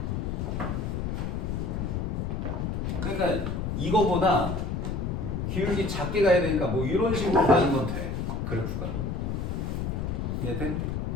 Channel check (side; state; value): left; noise; rumble, 1 dB below the sound